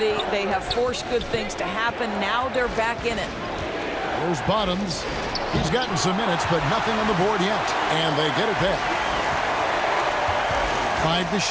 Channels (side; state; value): both; identical; correlation 1.00